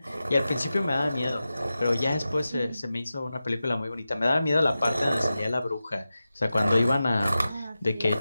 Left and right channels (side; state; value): both; inverted; correlation -0.93